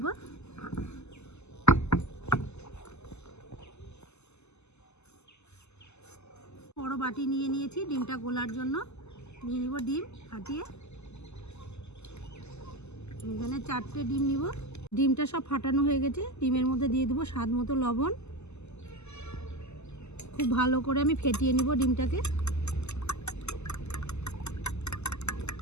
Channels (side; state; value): right; late; 0.81 ms